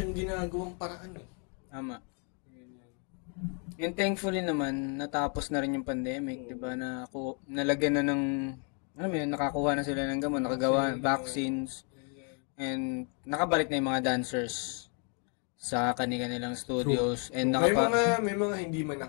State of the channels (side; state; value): right; quieter; 38.5 dB